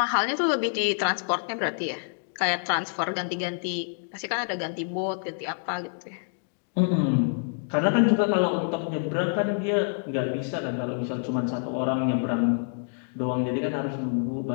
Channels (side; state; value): right; silent; digital silence